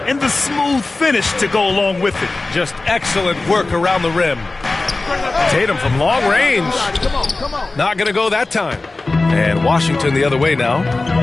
And the smooth finish to go along with it. Just excellent work around the rim. Tatum from long range. Not going to go that time. And Washington the other way now.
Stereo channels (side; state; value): right; quieter; 3.3 dB